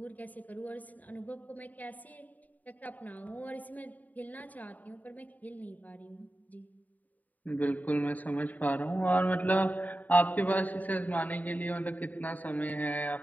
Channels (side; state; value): right; late; 0.078 ms